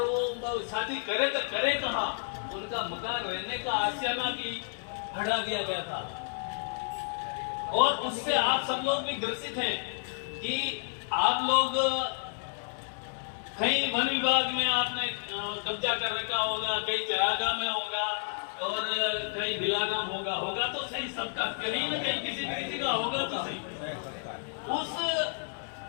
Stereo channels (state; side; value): silent; right; digital silence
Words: वो शादी करे तो करे कहां? उनका मकान रहने का आशियाना भी हटा दिया गया था। और उससे आप सब लोग भी ग्रसित हैं कि आप लोग कहीं वन विभाग में आपने कब्जा कर रखा होगा, कहीं चरागा में होगा, और कहीं बिलाना होगा तो सही, सबका कहीं न कहीं किसी का होगा तो सही। उस